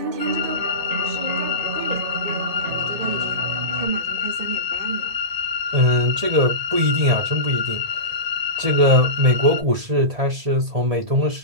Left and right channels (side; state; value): left; late; 1.8 ms